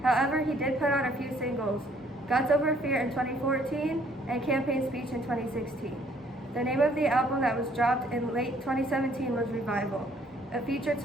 However, he did put out a few singles, Guts Over Fear in 2014 and Campaign Speech in 2016. The name of the album that was dropped in late 2017 was Revival. It featured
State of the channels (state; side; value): normal; both; correlation 0.63